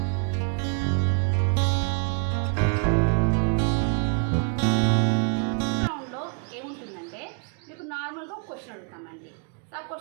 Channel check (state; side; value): quieter; left; 37.5 dB